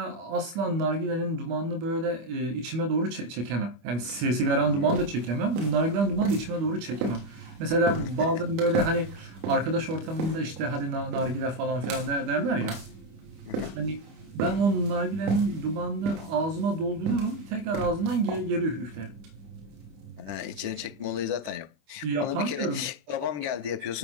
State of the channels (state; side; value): late; left; 25 ms